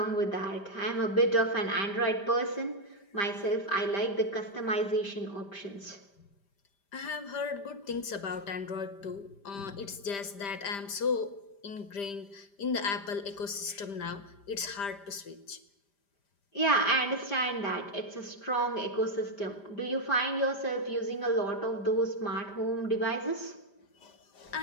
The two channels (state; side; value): late; right; 5.0 ms